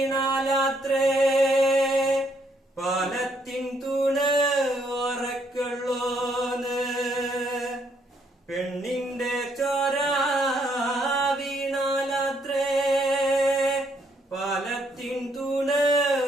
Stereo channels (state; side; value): normal; both; correlation 0.71